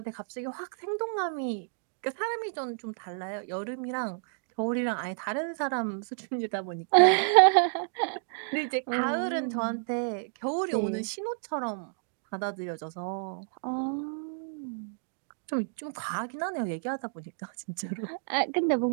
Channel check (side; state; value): left; silent; digital silence